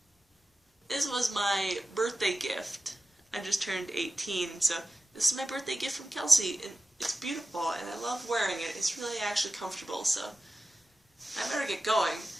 This was my birthday gift. I just turned 18, so this is my birthday gift from Kelsey, and it's beautiful, and I love wearing it. It's really actually comfortable, so I better get going.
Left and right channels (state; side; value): normal; both; correlation 0.94